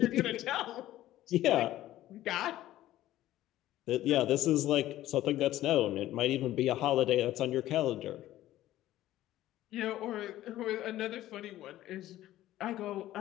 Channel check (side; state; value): right; quieter; 14.4 dB